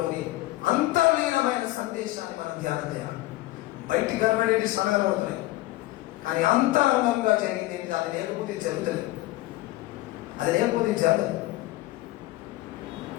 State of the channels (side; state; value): right; quieter; 17.6 dB